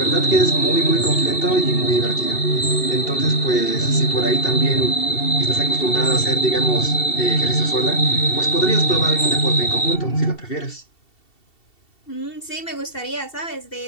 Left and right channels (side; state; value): right; late; 2.7 ms